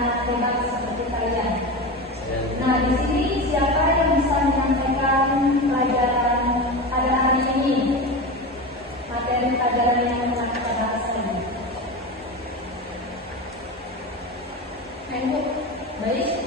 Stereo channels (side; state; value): both; normal; correlation 0.24